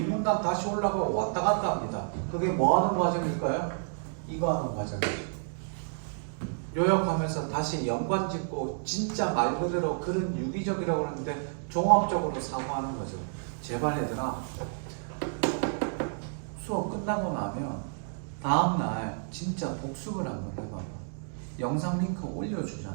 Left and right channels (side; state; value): left; silent; digital silence